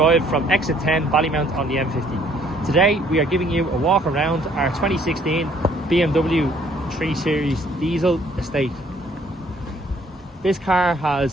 from exit 10 Ballymount on the M50. Today we are giving you a walk around our 2016 BMW 3 Series diesel estate. This car has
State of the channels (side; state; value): both; normal; correlation 0.62